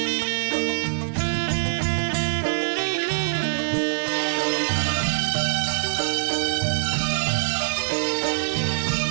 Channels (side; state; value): left; silent; 62 dB below the other